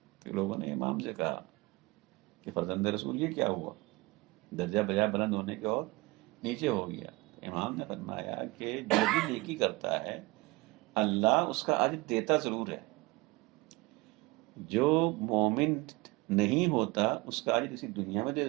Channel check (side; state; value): left; quieter; 22.9 dB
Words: تو لوگوں نے امام سے کہا کہ فرزند رسول یہ کیا ہوا، درجہ بجائے بلند ہونے کے اور نیچے ہو گیا. امام نے فرمایا کہ جو بھی نیکی کرتا ہے اللہ اس کا اجر دیتا ضرور ہے. جو مومن نہیں ہوتا اس کا اجر اسی دنیا میں دے